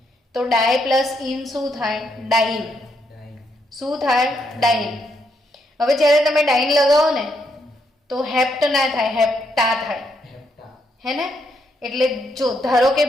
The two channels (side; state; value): both; normal; correlation 0.77